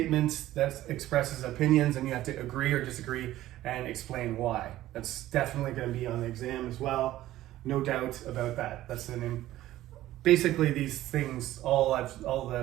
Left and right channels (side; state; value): left; quieter; 14.8 dB